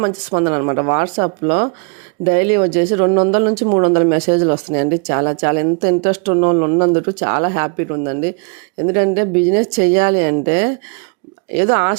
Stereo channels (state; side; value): quieter; left; 38.0 dB